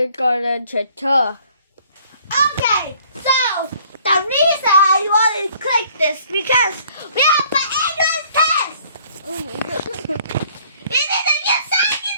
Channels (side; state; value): both; inverted; correlation -0.58